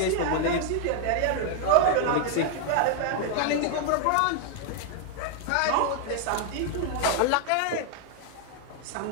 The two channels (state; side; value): different; both; correlation 0.00